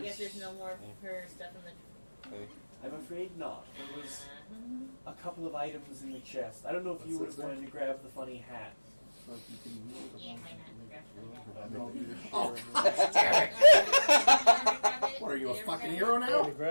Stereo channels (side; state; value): both; inverted; correlation -1.00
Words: guess there's no more of her stuff in the. Okay. I'm afraid not. There was a couple of items in the chest. I don't know if you would have wanted to grab the funny hat. Like you can move it. Yeah, why not? Grab I some make the- of that. What are you, a Did you fucking ever hero grab I now? to